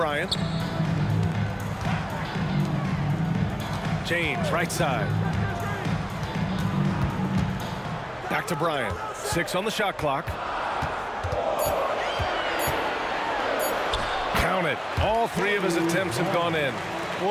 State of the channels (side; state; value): both; identical; correlation 1.00